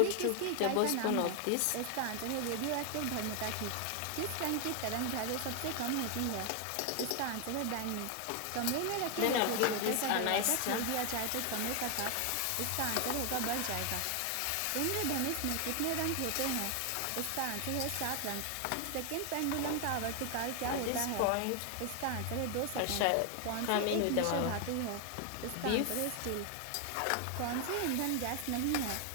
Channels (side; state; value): both; different; correlation 0.00